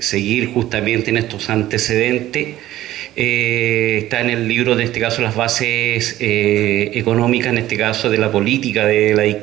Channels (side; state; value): left; quieter; 14.5 dB